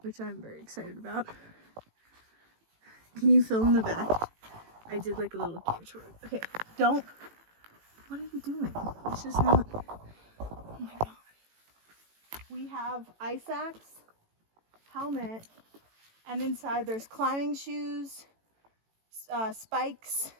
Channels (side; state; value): left; late; 18 ms